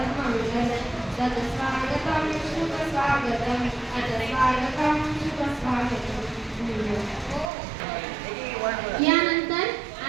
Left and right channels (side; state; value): left; drops out; at 7.5 s